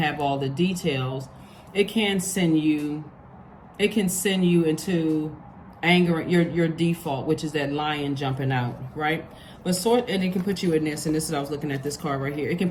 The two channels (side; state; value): both; identical; correlation 1.00